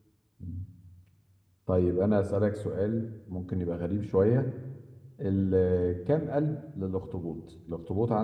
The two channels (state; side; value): identical; both; correlation 1.00